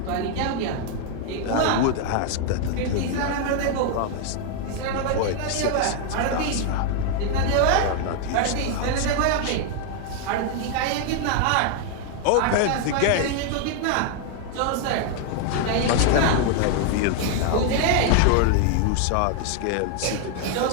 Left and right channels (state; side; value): different; both; correlation 0.00